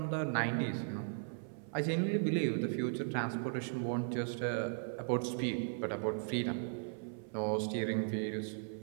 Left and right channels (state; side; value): silent; left; 53 dB below the other